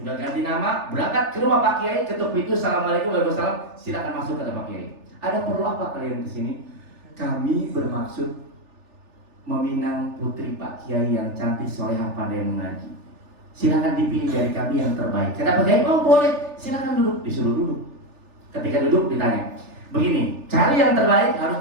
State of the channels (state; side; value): late; left; 3.4 ms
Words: ganti nama, berangkat ke rumah Pak Kiai, ketuk pintu, assalamualaikum warahmatullahi wabarakatuh, silakan masuk kata Pak Kiai. Ada perlu apa kalian kesini? Kami bermaksud meminang putri Pak Kiai yang cantik, solehah, pandai mengaji. Silakan dipilih dari kami yang terbaik. Kata Pak Kiai, oh boleh, silakan duduk. Disuruh duduk. Ketika duduk ditanya, begini, cari yang terbaik harus